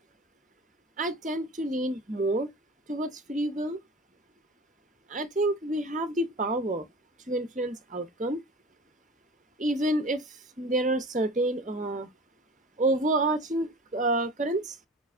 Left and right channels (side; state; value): both; normal; correlation 0.38